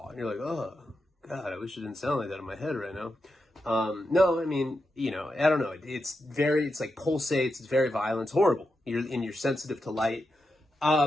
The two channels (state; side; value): normal; both; correlation 0.87